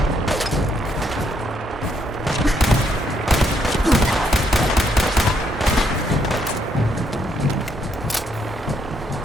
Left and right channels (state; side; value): normal; both; correlation 0.74